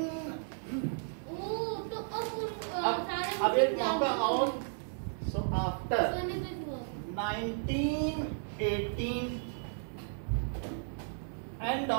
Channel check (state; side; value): silent; left; digital silence